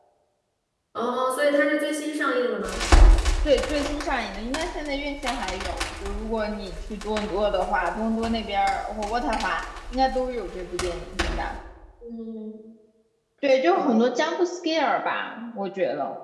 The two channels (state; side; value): identical; both; correlation 1.00